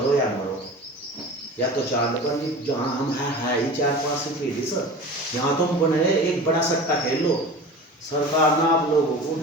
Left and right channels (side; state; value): both; normal; correlation 0.35